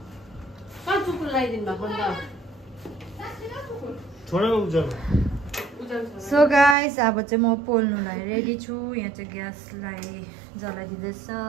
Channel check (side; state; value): left; drops out; at 6.8 s